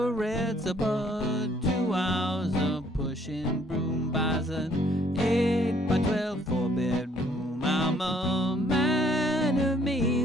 but 2 hours of pushing broom buys an 8 by 12 4-bedroom. I'm a man of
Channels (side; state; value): both; normal; correlation 0.64